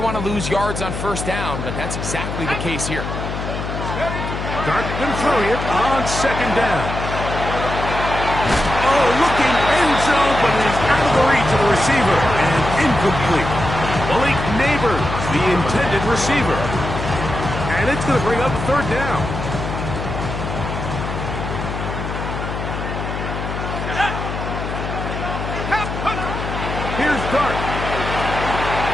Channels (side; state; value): left; noise; hum, 5 dB below the sound